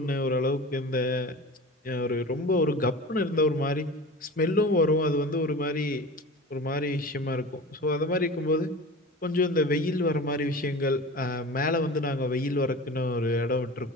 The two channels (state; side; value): normal; both; correlation 0.34